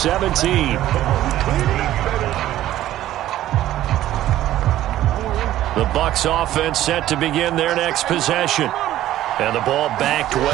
The Bucs offense set to begin their next possession. And the ball backed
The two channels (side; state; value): left; quieter; 13.7 dB